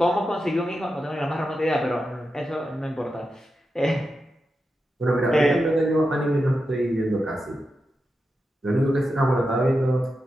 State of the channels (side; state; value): both; normal; correlation 0.89